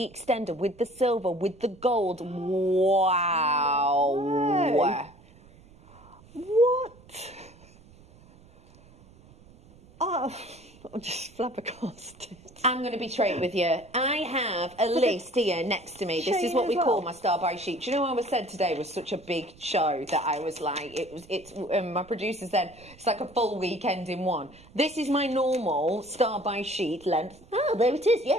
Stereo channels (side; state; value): right; noise; rumble, 25 dB below the sound